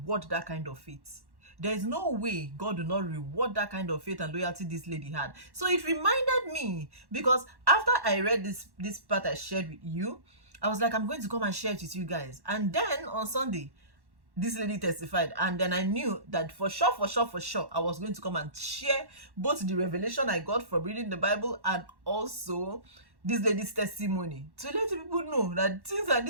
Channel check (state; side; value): late; left; 1.1 ms